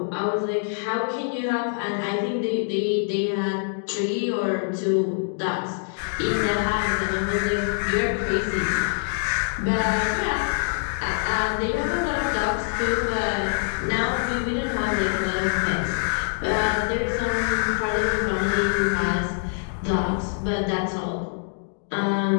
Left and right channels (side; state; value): right; silent; digital silence